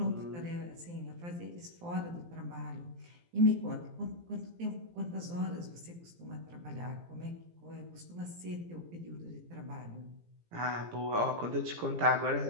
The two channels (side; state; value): left; late; 17 ms